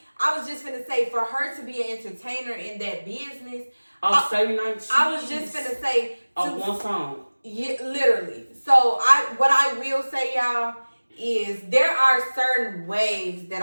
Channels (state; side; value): inverted; both; correlation -1.00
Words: I was just finna say, for her to be an entertainer in that business. I was just finna say. One song. Yeah, literally. So what I will say, y'all, is there are certain waves that